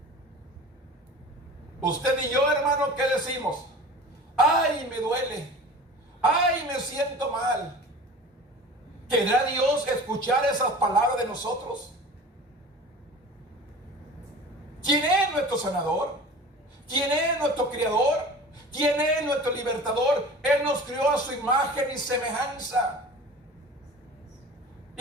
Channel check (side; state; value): both; normal; correlation 0.39